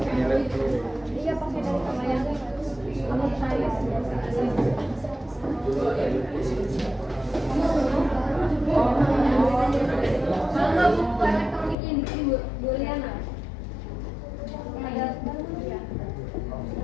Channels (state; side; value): drops out; right; at 11.8 s